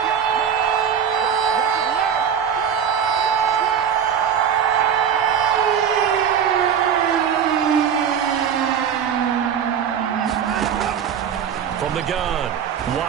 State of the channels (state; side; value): quieter; left; 8.2 dB